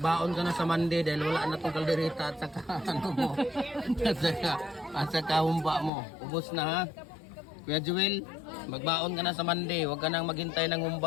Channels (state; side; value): drops out; right; at 5.9 s